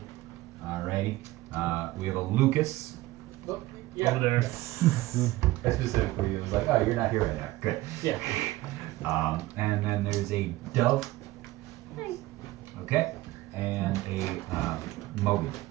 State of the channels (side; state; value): left; quieter; 17.8 dB